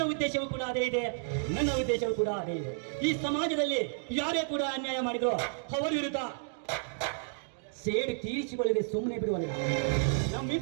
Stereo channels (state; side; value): silent; left; digital silence